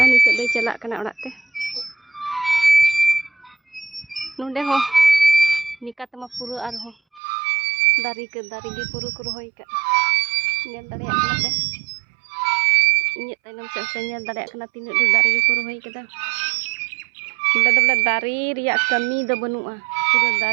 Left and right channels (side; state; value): left; drops out; at 7.2 s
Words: nitok day chalak kana orak te. Nonde ho nika tama pura arho. Dari ke dari gi puru ku rohoy ka. Nyel dareyak kana te. Inyek tainam sa nyel dareyak kana tinuk de dari gi ku rohoy kada. Udah belah dari riak kami do banua. Pura